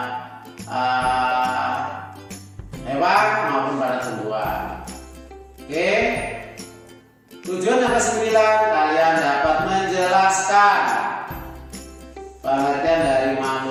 hewan maupun pada tumbuhan. Oke. Tujuan yang kesembilan, kalian dapat menjelaskan pengertian dari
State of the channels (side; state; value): both; identical; correlation 1.00